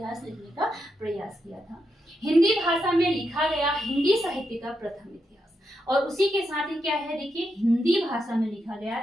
लिखने का प्रयास किया था। हिंदी भाषा में लिखा गया हिंदी साहित्य का प्रथम इतिहास, और उसी के साथ ही क्या है, देखिए हिंदी भाषा में लिखा गया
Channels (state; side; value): normal; both; correlation 0.83